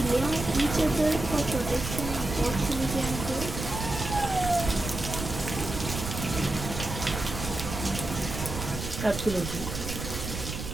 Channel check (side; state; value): right; noise; rumble, 6 dB below the sound